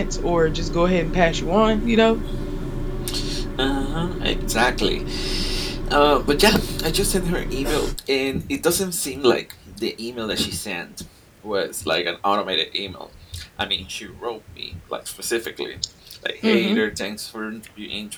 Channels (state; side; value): identical; both; correlation 1.00